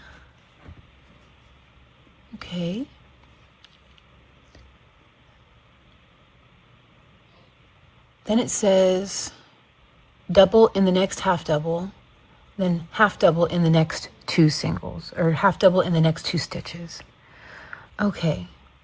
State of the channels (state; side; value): identical; both; correlation 1.00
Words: Okay. Then it says double in the next half double, then half double in the next 2 singles, or half double in the next 2 stitches. Okay.